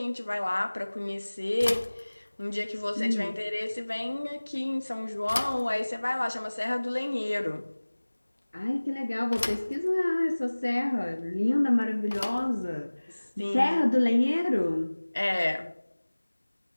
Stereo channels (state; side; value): inverted; both; correlation -1.00